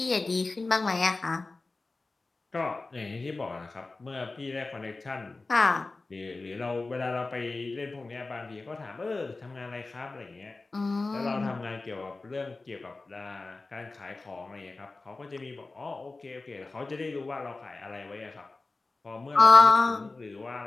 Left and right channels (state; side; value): quieter; right; 3.5 dB